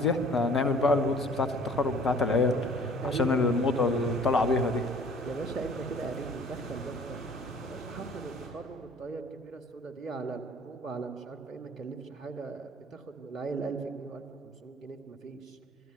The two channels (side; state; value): both; normal; correlation 0.51